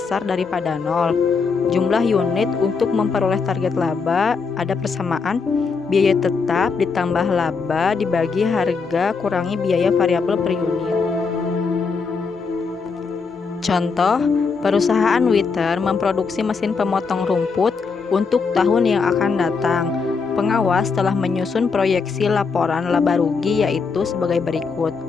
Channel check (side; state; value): right; quieter; 5.0 dB